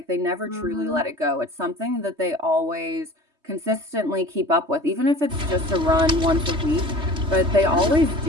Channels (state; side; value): late; left; 3.3 ms